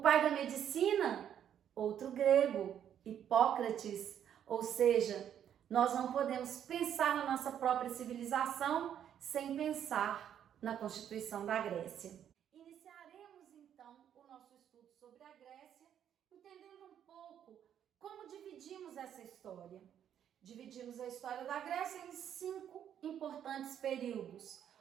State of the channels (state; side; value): quieter; left; 9.6 dB